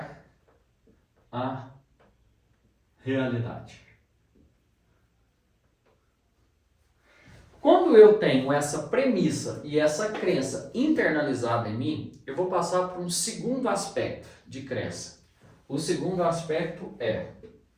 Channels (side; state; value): both; identical; correlation 1.00